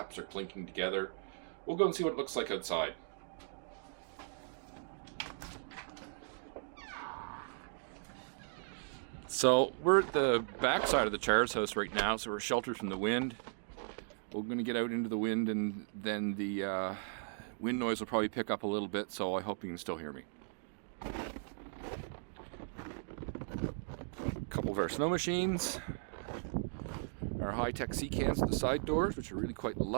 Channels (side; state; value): left; silent; digital silence